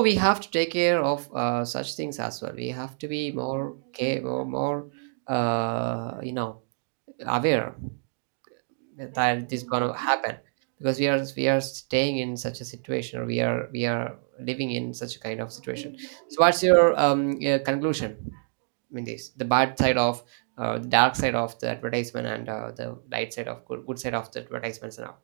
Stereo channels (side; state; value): left; silent; digital silence